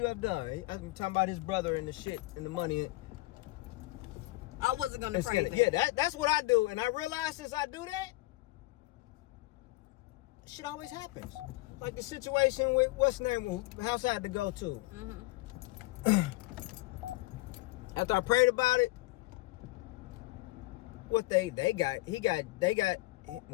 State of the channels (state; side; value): quieter; right; 20.7 dB